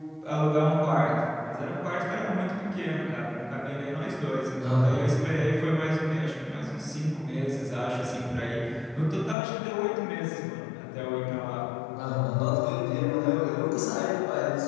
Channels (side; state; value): right; drops out; at 9.3 s